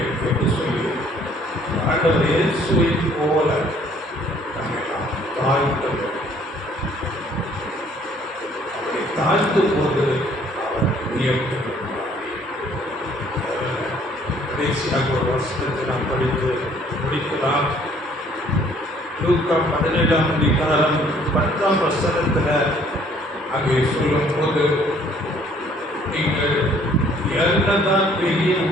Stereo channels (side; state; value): both; normal; correlation 0.60